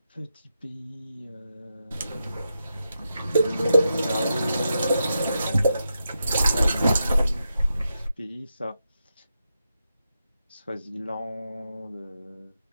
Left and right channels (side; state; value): both; inverted; correlation -0.86